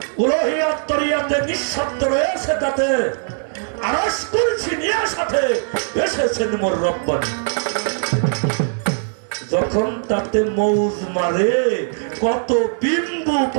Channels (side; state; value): left; silent; digital silence